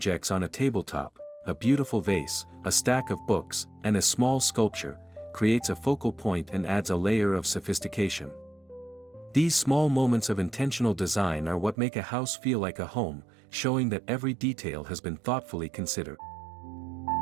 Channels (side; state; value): left; drops out; at 11.8 s